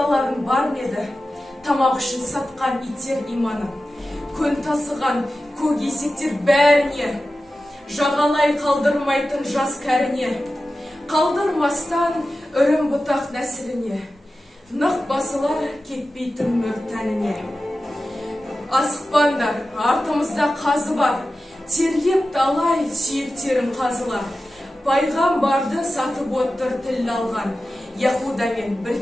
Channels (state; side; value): normal; both; correlation 0.94